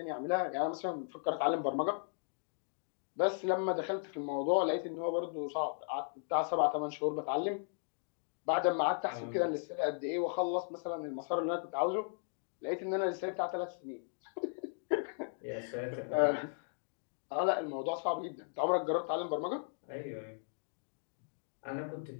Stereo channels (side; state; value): right; silent; digital silence